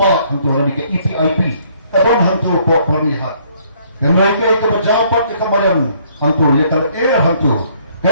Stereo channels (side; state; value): both; inverted; correlation -0.64